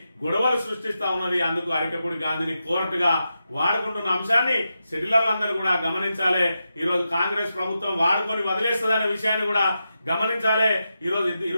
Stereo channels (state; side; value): inverted; both; correlation -0.88